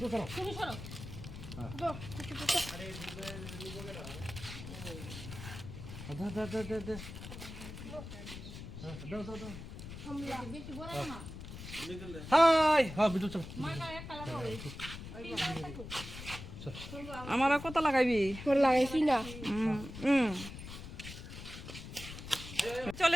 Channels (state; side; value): noise; left; rumble, 11 dB below the sound